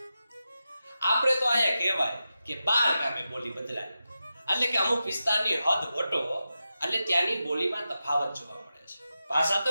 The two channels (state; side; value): inverted; both; correlation -0.91